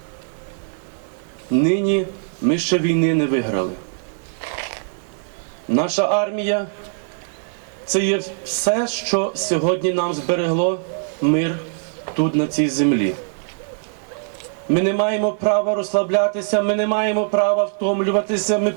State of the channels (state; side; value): silent; left; digital silence